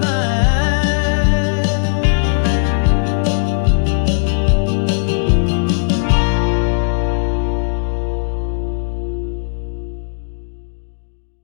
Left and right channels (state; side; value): silent; right; 64 dB below the other